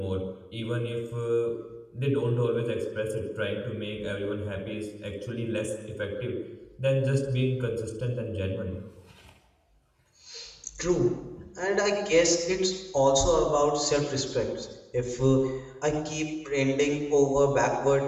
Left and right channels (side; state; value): both; identical; correlation 1.00